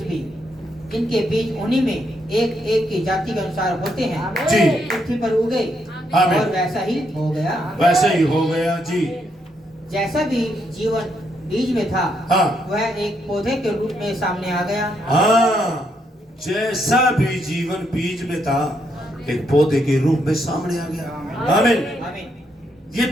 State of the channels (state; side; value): normal; both; correlation 0.77